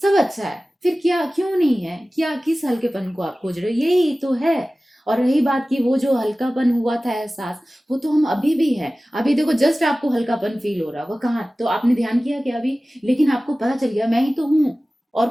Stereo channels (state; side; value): normal; both; correlation 0.97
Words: सब अच्छा है, फिर क्या क्यों नहीं है? क्या किस हल्केपन को आप खोज रहे हो? यही तो है। और रही बात की वो जो हल्कापन हुआ था एहसास, वो तो हम अभी भी है। अभी देखो जस्ट आपको हल्कापन फील हो रहा, वो कहाँ, तो आपने ध्यान किया क्या अभी? लेकिन आपको पता चल गया मैं ही तो हूँ, और